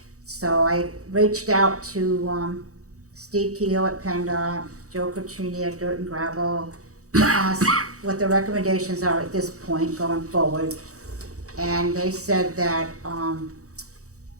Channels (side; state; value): left; late; 0.65 ms